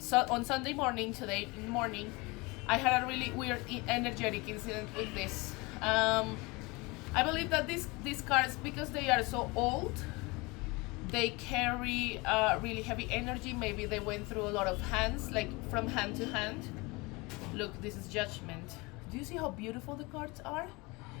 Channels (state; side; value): quieter; right; 25.2 dB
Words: Sunday morning, today in the morning, I had a really weird energetic incident with this. I believe that these cards, because they are so old, they carry really heavy energy. Maybe they went through a lot of hands, like from hand to hand. Look, this is Judgment. Do you see how beautiful the cards are?